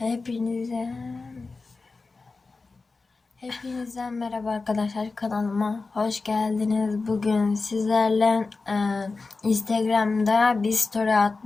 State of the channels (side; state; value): right; quieter; 3.9 dB